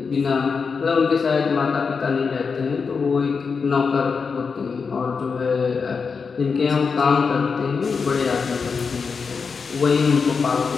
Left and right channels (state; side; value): quieter; right; 5.3 dB